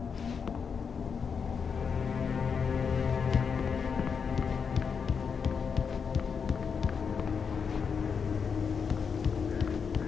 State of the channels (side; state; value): right; quieter; 6.1 dB